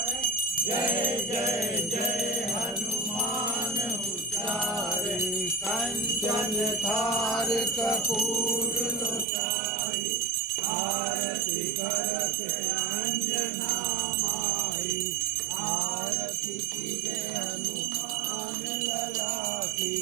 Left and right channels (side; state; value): left; drops out; at 9.2 s